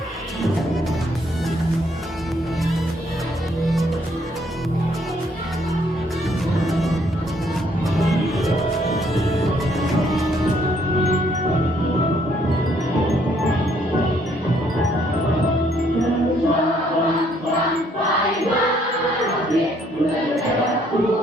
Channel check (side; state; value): both; normal; correlation 0.67